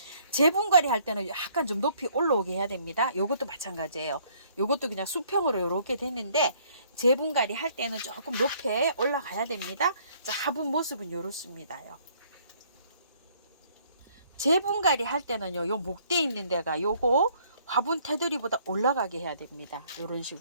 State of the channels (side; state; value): both; inverted; correlation -0.62